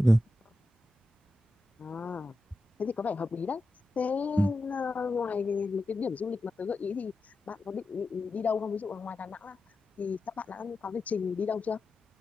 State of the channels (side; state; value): both; normal; correlation 0.92